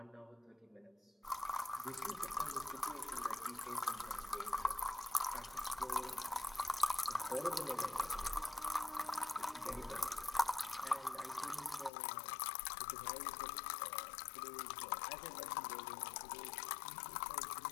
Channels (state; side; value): drops out; right; at 11.9 s